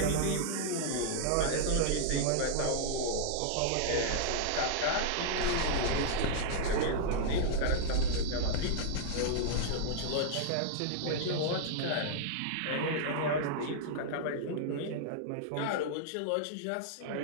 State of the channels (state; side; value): different; both; correlation -0.01